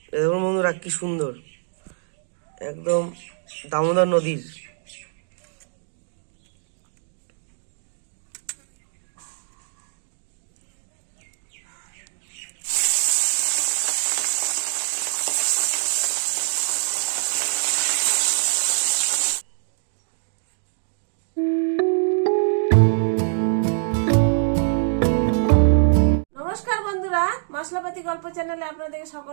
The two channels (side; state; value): left; silent; digital silence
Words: দেখুন বন্ধুরা, কি সুন্দর, একদম দামোদর নদীর। নমস্কার বন্ধুরা, মশলাপাতি গল্প চ্যানেলে আপনাদের